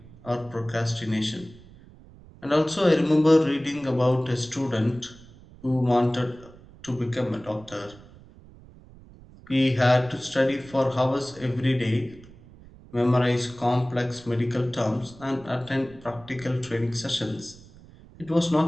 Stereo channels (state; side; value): noise; right; rumble, 22 dB below the sound